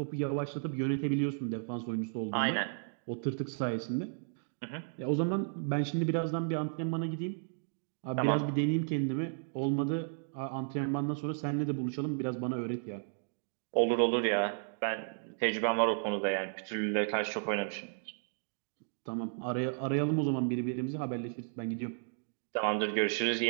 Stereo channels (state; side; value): silent; left; digital silence